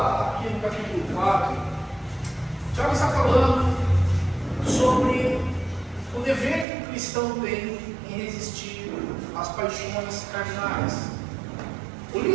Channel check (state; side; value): drops out; left; at 6.7 s